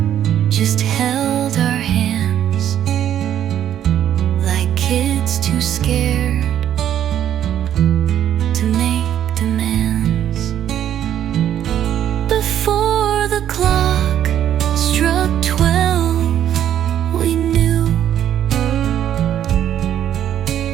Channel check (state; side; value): quieter; left; 10.6 dB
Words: just held our hands like kids too scared to make demands. Before the clock struck 12, we knew